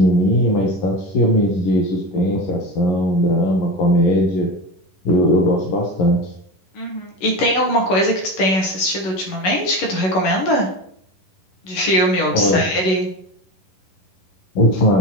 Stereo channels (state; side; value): late; right; 11 ms